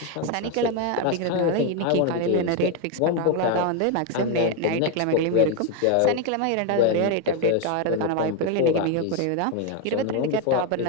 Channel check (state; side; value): different; both; correlation 0.01